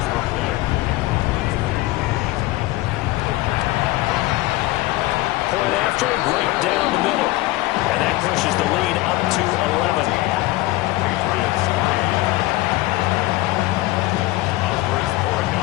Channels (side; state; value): right; quieter; 18.6 dB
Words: Point after, right down the middle. And that pushes the lead up to 11.